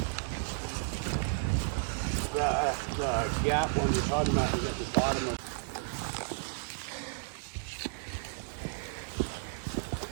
The gap one you're talking about is at the bottom of.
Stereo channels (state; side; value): silent; left; digital silence